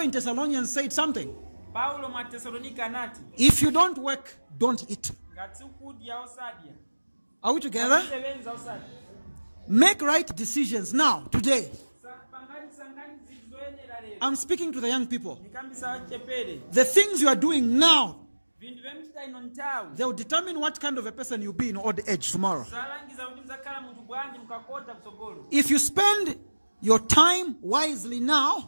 in Thessalonians said something. If you don't work, don't eat. Are we together? Make right decisions now, today. I'm speaking to the young people. The things you are doing now, they will determine what kind of a person you'll be in old age tomorrow. If you spend your time wisely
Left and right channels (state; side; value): inverted; both; correlation -1.00